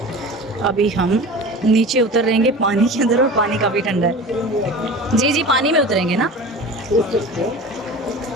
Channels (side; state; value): both; normal; correlation 0.35